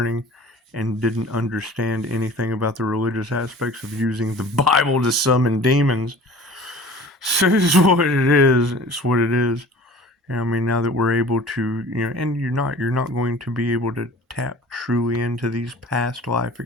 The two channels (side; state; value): both; normal; correlation 0.44